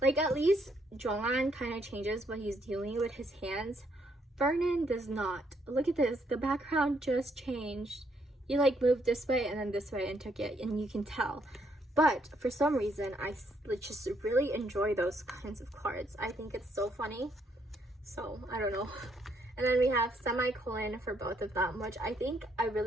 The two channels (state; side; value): normal; both; correlation 0.72